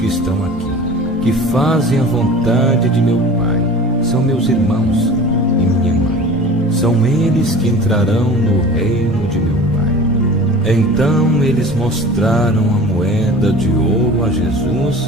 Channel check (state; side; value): normal; both; correlation 0.40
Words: estão aqui que fazem a vontade de meu Pai são meus irmãos e minha mãe. São eles que entrarão no reino de meu Pai. Então eles mostraram a moeda de ouro a